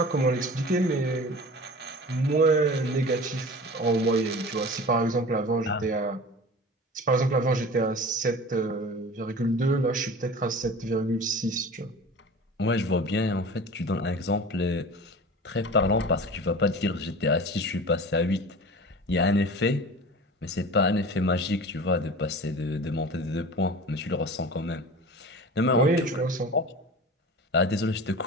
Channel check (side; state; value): both; normal; correlation 0.37